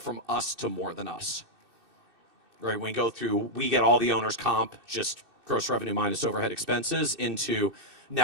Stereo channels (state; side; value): late; left; 2.6 ms